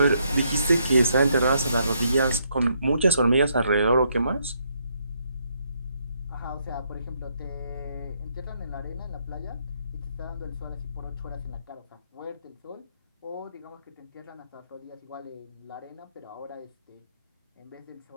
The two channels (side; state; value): both; inverted; correlation -0.74